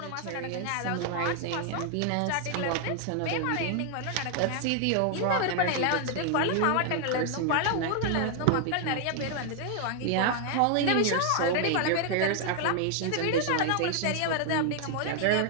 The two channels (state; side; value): different; both; correlation 0.00